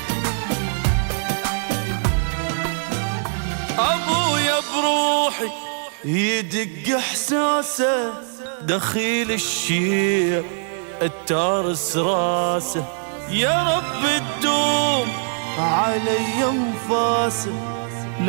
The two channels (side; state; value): left; silent; 64 dB below the other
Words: أبويا بروحي يدق إحساسه، دخيل الشيع التارس راسه. يا رب تدوم علي انفاسه،